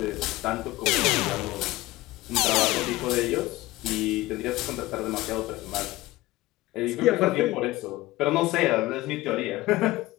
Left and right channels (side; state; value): right; quieter; 18.6 dB